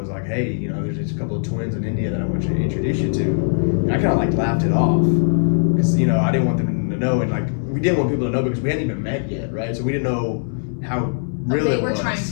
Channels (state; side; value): silent; right; 65 dB below the other